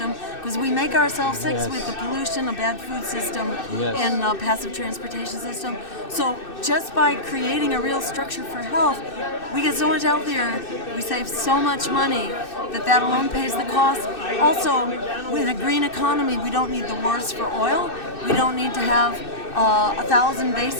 because we make ourselves sick with the pollution, a bad food system, and a passive transportation system. So just by creating a real structure for health, we get so much healthier, we save so much money that alone pays the cost. Also, with a green economy, we don't need the wars for oil. We don't need to have 1,000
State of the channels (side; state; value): right; late; 2.6 ms